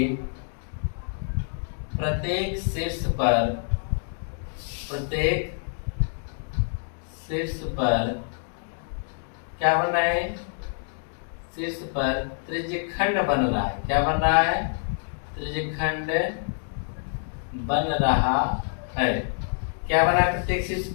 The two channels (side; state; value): right; silent; digital silence